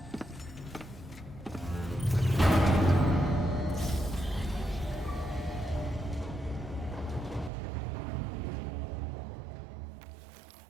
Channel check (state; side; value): drops out; left; at 7.5 s